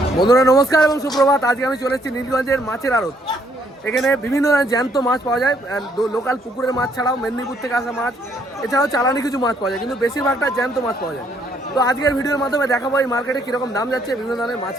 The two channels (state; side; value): normal; both; correlation 0.68